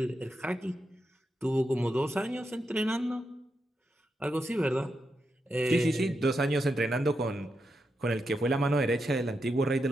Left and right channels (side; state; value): both; normal; correlation 0.85